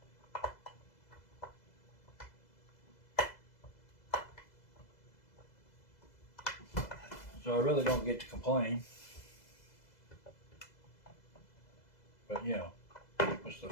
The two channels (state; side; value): late; right; 2.0 ms